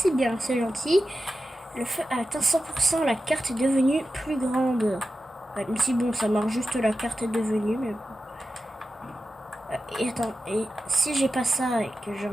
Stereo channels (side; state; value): both; normal; correlation 0.92